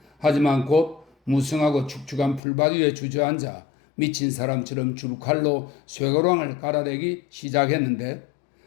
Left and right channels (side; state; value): right; drops out; at 2.4 s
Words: 하지만 곧 무성하고 축축한 풀밭 위에 주저앉아 미친 사람처럼 줄칼로 쇠고랑을 갈아대기 시작했는데